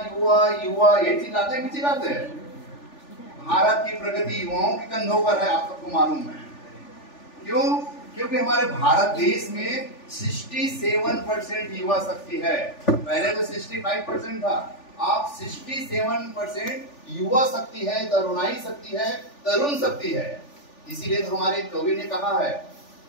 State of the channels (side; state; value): right; late; 3.4 ms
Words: युवा, ये चिल्लाते हैं कि चिल्लाते हैं? भारत की प्रगति युवाओं के कंधों पर है, आप सबको मालूम है। क्यों? क्योंकि हमारे भारत देश में 67% युवा शक्ति है। पहले तो 65% था, आप 67% युवा शक्ति है, तरुणाई शक्ति है, तरुण शक्ति है। इसीलिए तो हमारे कवि ने कहा है,